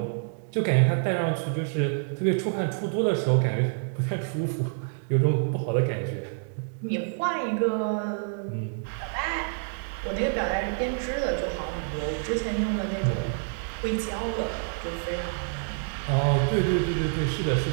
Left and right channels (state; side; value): silent; left; digital silence